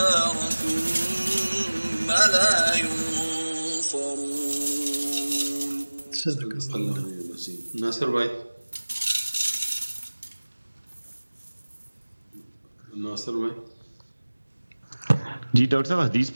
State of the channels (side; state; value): both; inverted; correlation -1.00